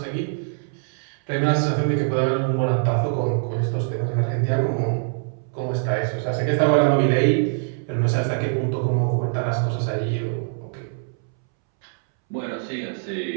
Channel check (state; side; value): silent; left; 63 dB below the other